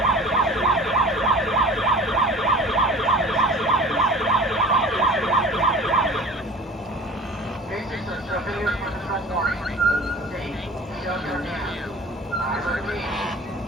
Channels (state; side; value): normal; both; correlation 0.42